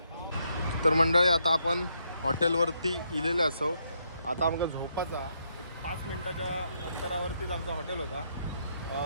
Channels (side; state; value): both; inverted; correlation -0.76